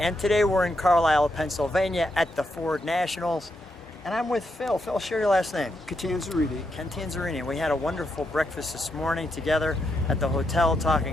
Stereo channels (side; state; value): both; normal; correlation 0.81